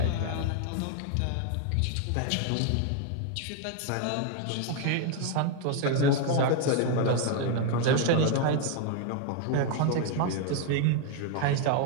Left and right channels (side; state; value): both; different; correlation 0.01